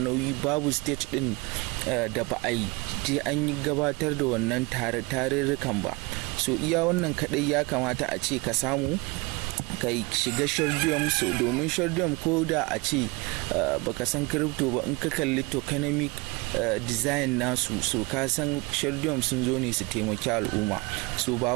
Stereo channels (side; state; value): left; quieter; 26.5 dB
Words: nauyi, babu state ɗin da ba a yi je an yi gabatar da wannan tarurrukan ba. So iya wannan kaɗai ya kamata a ce ka samu ka shiga Shardeum. So domin Shardeum ko da a ce baka san crypto ba, in ka kalli tokenomic design nasu, so ka san Shardeum sun zo ne su taimaki al'umma. So ba